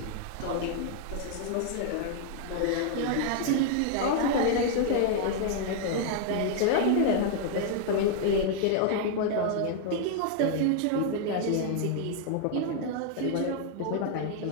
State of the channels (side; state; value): both; different; correlation 0.00